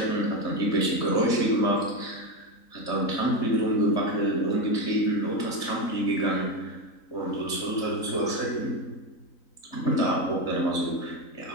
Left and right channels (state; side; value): late; right; 3.9 ms